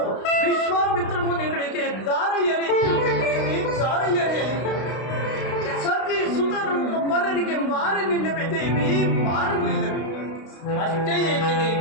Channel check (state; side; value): late; right; 32 ms